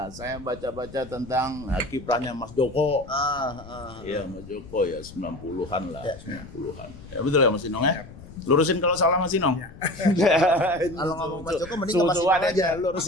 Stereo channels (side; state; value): left; noise; rumble, 17 dB below the sound